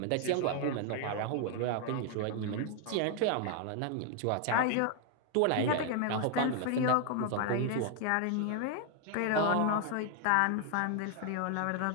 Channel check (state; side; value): different; both; correlation 0.00